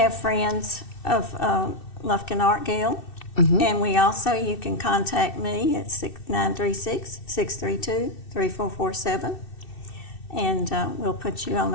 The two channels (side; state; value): right; late; 2.6 ms